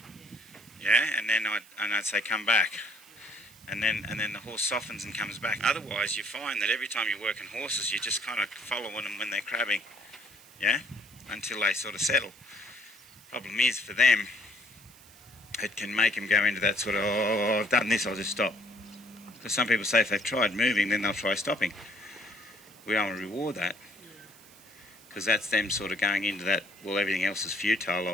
Yeah, and then I'd say come back. And then the horse softens and comes back. Otherwise, you find that every time you're working horses, you're just kind of following them when they're crabbing, yeah, until they sort of settle. Problem is, for them, it can make them go into that sort of, oh, I've done this, I'll just stop. Because some people say if they've tried moving, then they'll try stopping. We don't want to reward that. Because that's them sort of going into that, well, everything else is futile,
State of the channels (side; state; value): right; noise; hiss, 23 dB below the sound